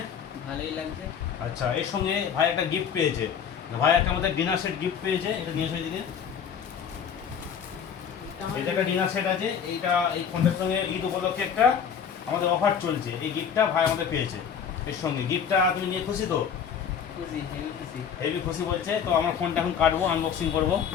ভালোই লাগছে। আচ্ছা, এর সঙ্গে ভাই একটা গিফট পেয়েছে। ভাই একটা আমাদের ডিনার সেট গিফট পেয়েছে, এটা নিয়ে এসো এদিকে। এটা একটা ডিনার সেট আছে, এই ফোনটার সঙ্গে ঈদ উপলক্ষে একটা আমাদের অফার চলছে, এই গিফটটা ভাই আমাদের পেয়েছে। এর সঙ্গে গিফটটা তুমি নিয়ে খুশি তো? খুশি, হেভি খুশি। হেভি খুশি বলছে। তো আমার ফোনটা এখন কাটবো, আনবক্সিং করবো।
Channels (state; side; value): quieter; right; 7.5 dB